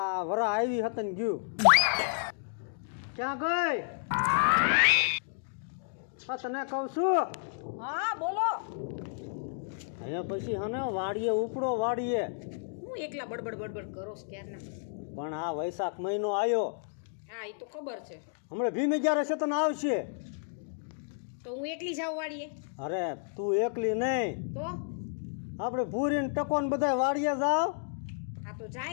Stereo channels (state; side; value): silent; right; digital silence